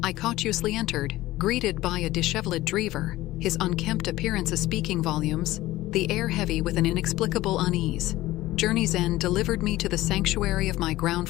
I cautiously entered, greeted by a disheveled driver, his unkempt appearance speaking volumes, the air heavy with an inexplicable unease. Journey's end delivered me to the sanctuary of my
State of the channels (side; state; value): right; quieter; 16.9 dB